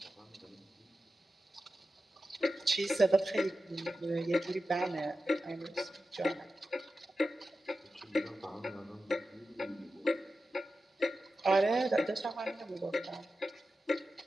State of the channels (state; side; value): normal; both; correlation 0.92